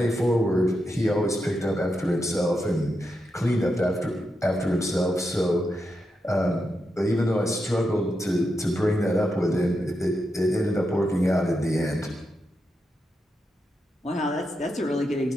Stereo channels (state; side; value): normal; both; correlation 0.86